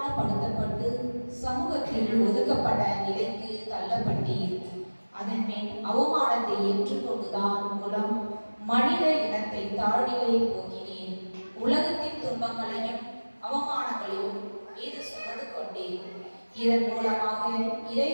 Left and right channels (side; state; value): both; inverted; correlation -1.00